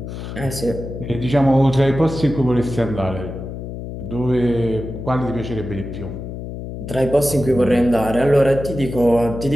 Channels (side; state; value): left; noise; hum, 8 dB below the sound